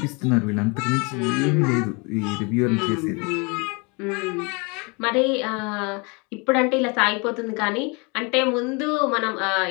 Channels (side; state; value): right; quieter; 30.1 dB